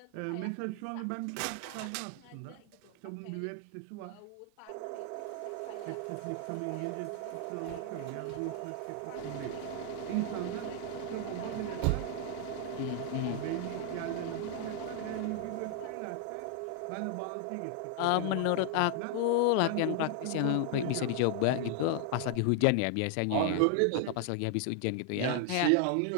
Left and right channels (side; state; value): both; different; correlation 0.00